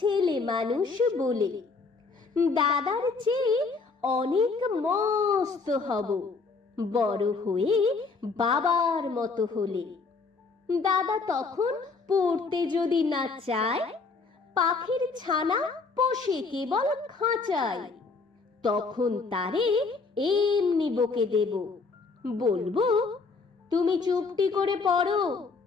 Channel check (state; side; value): quieter; right; 4.4 dB